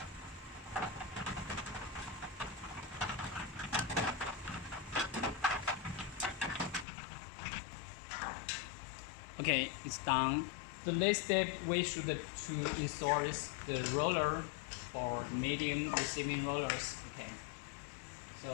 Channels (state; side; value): drops out; right; at 6.9 s